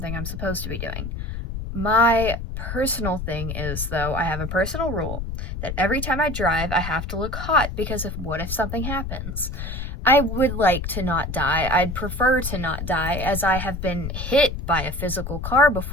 I'm supposed to be doing. My personal thing is, though, I have a personal rule that every time I drive, I have to look hot because what if something happens? I would like to not die. I'd prefer to not die, as I have been hit by a physical car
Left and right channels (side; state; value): left; noise; rumble, 6 dB below the sound